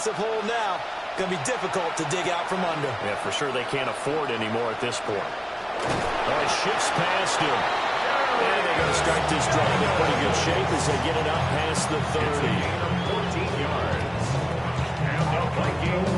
hole now. Going to be difficult to dig out from under. Yeah, for sure they can't afford any more at this point. Oh, he shifts past him. And they're going to start this drive in pretty good shape as they get it up past the 30. 14 yards. And the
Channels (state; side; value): identical; both; correlation 1.00